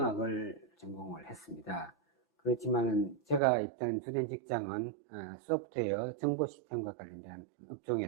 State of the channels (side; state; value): left; drops out; at 3.4 s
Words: 전공을 했습니다. 그렇지만 제가 있던 주된 직장은 소프트웨어 정보 시스템과 관련된